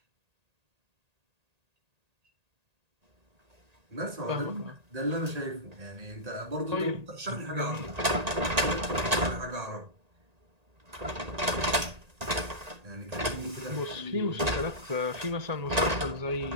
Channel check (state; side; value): late; left; 1.9 ms